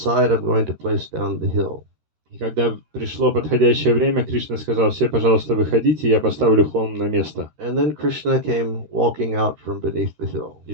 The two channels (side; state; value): left; late; 13 ms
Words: I'm going to place down the hill. И когда пришло подходящее время, Кришна сказал, все, пожалуйста, выходите, я поставлю холм на место. And then Krishna came walking out from beneath the hill. И